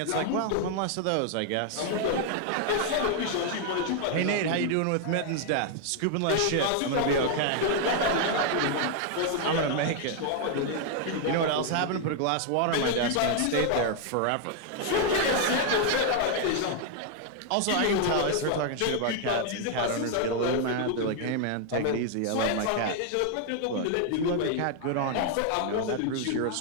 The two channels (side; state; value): both; different; correlation 0.00